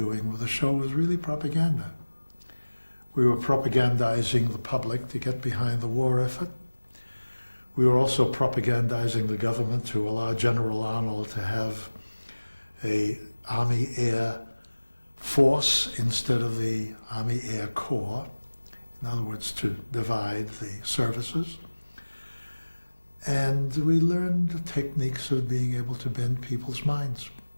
with the show was really propaganda. We were propagandizing the public to get behind the war effort. We were also propagandizing the government to allow General Arnold to have a Army Air Force instead of the Army Air Corps. In other words, to divide the services. And we learned the techniques of being able to bend people's minds.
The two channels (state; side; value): inverted; both; correlation -1.00